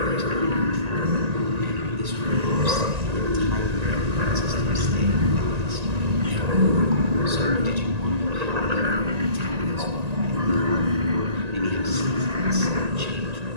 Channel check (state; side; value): late; left; 1.9 ms